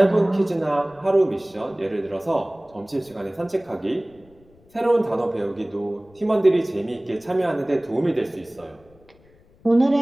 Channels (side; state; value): left; noise; rumble, 29 dB below the sound